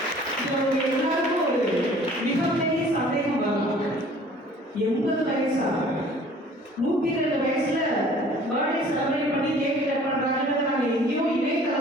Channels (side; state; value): both; normal; correlation 0.51